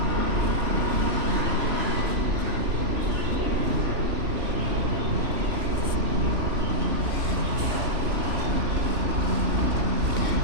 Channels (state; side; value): late; left; 3.0 ms